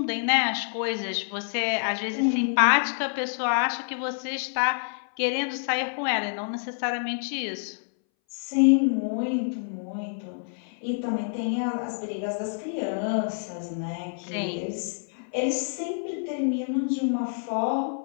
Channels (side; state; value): right; silent; 60 dB below the other